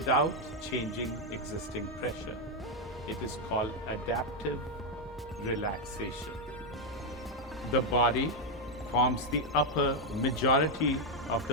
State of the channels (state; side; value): normal; both; correlation 0.02